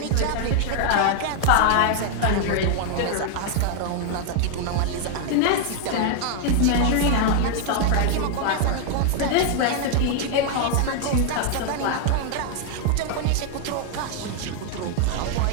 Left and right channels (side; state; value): both; different; correlation 0.00